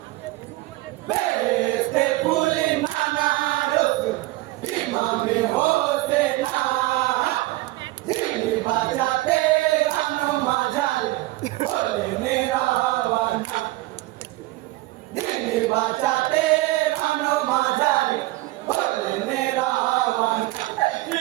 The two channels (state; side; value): quieter; left; 19.0 dB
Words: বেহেশতে ফুল নানা রসুল ইমামে হোসেনা দিল্লি বাঁচাতে রানো মাঝার হলে মেরা ওয়ানা দিল্লি বাঁচাতে রানো মাঝার হলে মেরা ওয়ানা